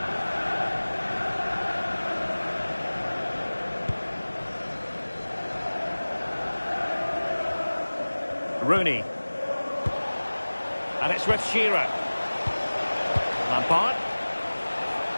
Rooney. And it's with Shearer. Lampard.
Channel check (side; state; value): both; inverted; correlation -1.00